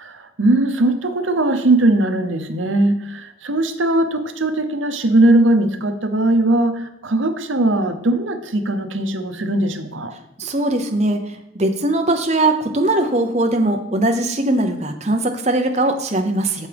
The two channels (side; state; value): both; normal; correlation 0.53